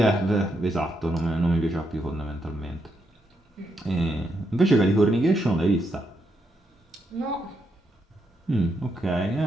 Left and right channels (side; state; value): both; normal; correlation 0.80